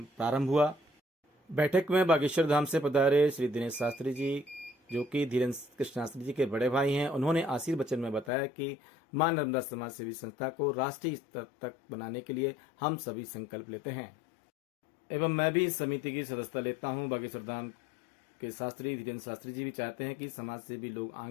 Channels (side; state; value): right; drops out; at 8.3 s